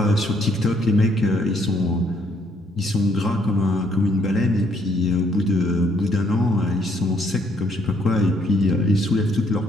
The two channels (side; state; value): both; normal; correlation 0.69